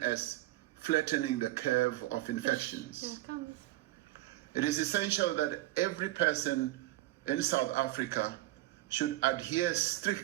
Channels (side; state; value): left; quieter; 16.8 dB